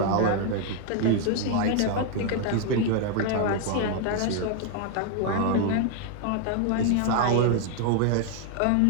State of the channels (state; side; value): different; both; correlation 0.00